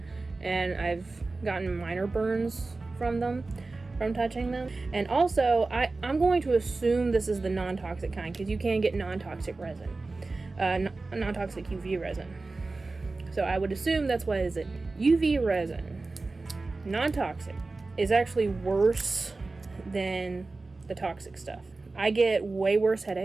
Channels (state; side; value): quieter; left; 3.5 dB